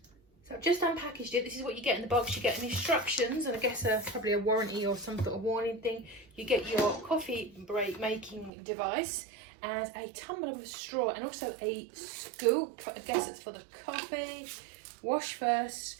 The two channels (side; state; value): left; drops out; at 8.5 s